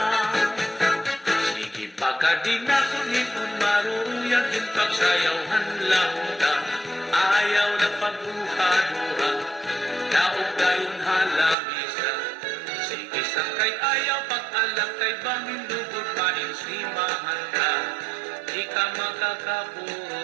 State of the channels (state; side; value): drops out; left; at 11.6 s